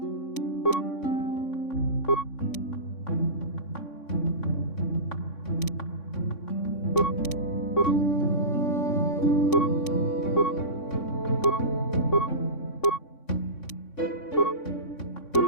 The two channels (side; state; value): right; late; 3.6 ms